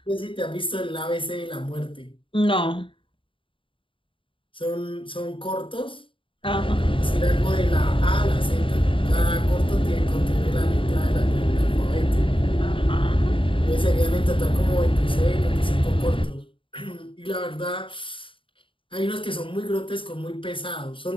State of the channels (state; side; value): late; right; 0.25 ms